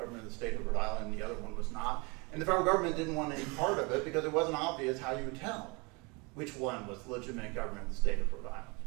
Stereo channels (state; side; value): quieter; left; 28.6 dB